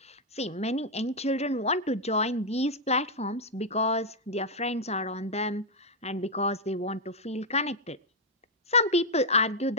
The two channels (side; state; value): both; normal; correlation -0.03